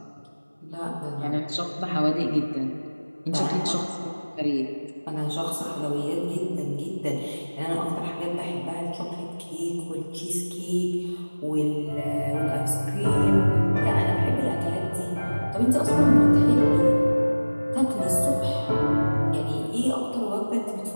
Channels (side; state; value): both; inverted; correlation -1.00